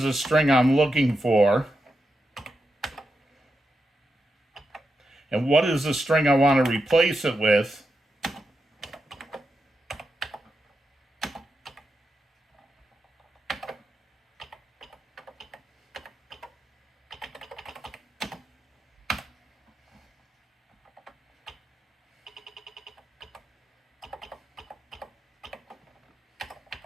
the string I'm looking for? And what is the string I want to replace it with?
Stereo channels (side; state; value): both; normal; correlation 0.87